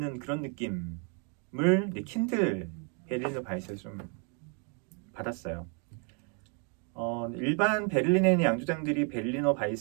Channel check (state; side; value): quieter; left; 38.4 dB